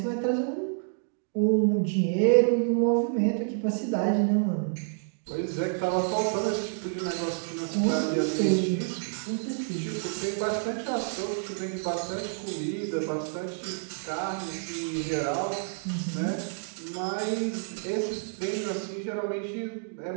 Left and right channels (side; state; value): left; silent; digital silence